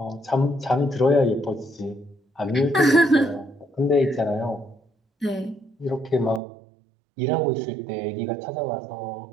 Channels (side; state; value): left; drops out; at 6.4 s